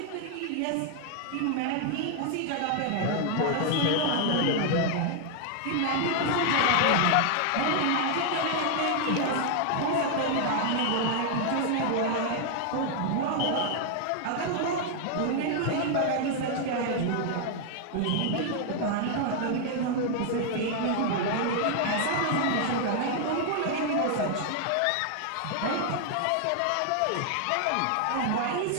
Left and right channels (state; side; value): different; both; correlation 0.00